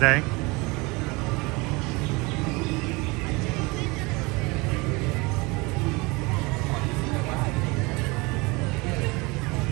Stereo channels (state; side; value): quieter; left; 25.5 dB